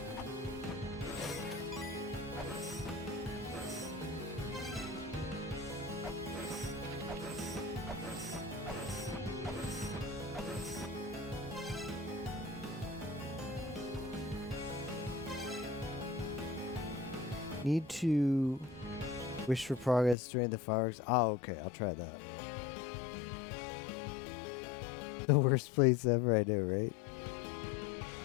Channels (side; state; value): right; drops out; at 20.2 s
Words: Need to wish for progress during the fireworks. Oh, okay. I'll try that. The worst place ever, I know, right?